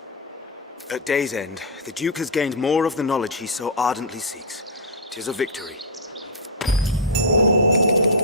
At day's end, the Duke has gained more of the knowledge he so ardently seeks. 'Tis a victory.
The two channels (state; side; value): normal; both; correlation -0.06